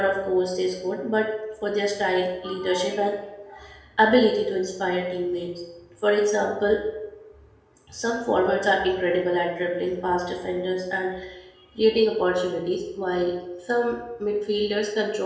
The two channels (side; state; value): both; identical; correlation 1.00